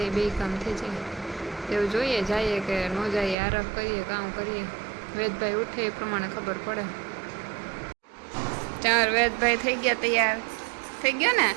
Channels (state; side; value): drops out; left; at 3.4 s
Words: બે કામ થઈ જાય. એવું જોઈએ જઈએ કે ન જઈએ આરફ કરીએ કામ કરીએ. વેદભાઈ ઉઠે એ પ્રમાણે ખબર પડે. ચાર વેદભાઈ થઈ ગયા તૈયાર. થઈ ગયો ને